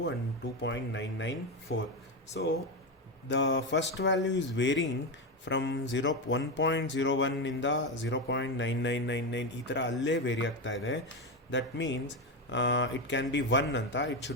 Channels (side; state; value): both; normal; correlation 0.13